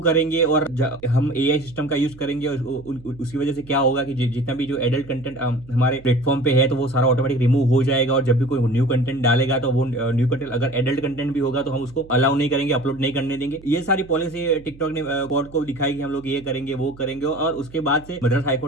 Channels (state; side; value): noise; right; hum, 21 dB below the sound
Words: करेंगे, और हम एआई सिस्टम का यूज करेंगे। उसकी वजह से क्या होगा कि जितना भी जो एडल्ट कंटेंट हमारे प्लेटफॉर्म पे है, तो वो सारा ऑटोमेटिक रिमूव हो जाएगा। और जब भी कोई न्यू कंटेंट डालेगा, तो वो न्यू कंटेंट अगर एडल्ट कंटेंट भी होगा तो हम उसको अलाउ नहीं करेंगे, अपलोड नहीं करने देंगे। ये सारी से टिकटॉक ने कोर्ट को दिखाई कि हम लोग ये करेंगे वो करेंगे, और उसके बाद से मद्रास